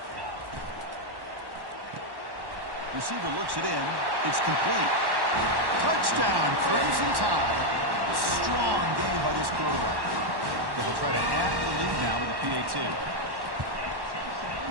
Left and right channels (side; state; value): left; late; 1.1 ms